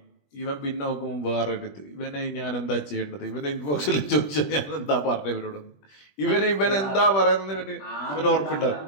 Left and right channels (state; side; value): late; right; 20 ms